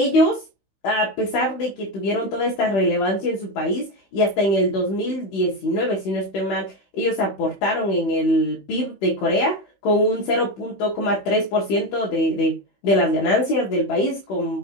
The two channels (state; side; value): late; right; 15 ms